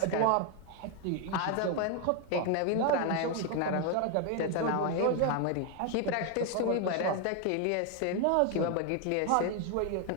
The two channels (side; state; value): both; different; correlation 0.01